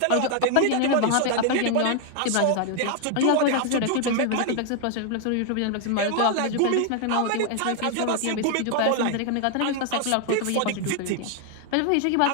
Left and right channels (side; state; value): both; different; correlation 0.00